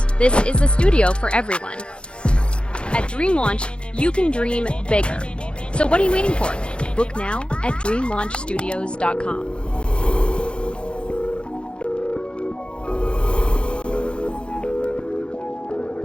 this is a studio for everyone. At Dream Launch, you can dream bigger. So what are you waiting for? Book now at dreamlaunchstudios.com.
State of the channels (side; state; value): right; late; 0.056 ms